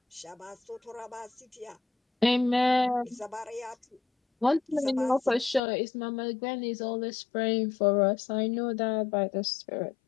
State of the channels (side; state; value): right; drops out; at 5.6 s